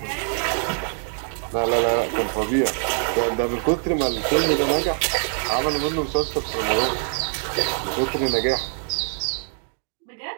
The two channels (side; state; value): left; silent; 57 dB below the other